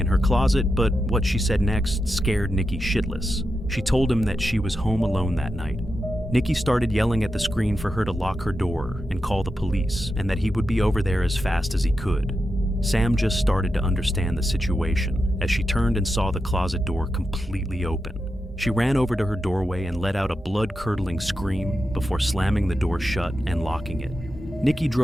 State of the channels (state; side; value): normal; both; correlation 0.88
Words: her closet, but what she said next scared Nikki shitless. She told him that she was home alone that night. Nikki started yelling at the screen for her to lock her door and call the police, and that he would be over there as fast as he could. Sam just started to understand the situation as she turned and saw the closet door completely open. She ran over to her doorway and let out a blood-curdling scream before slamming the door shut and locking it. Nikki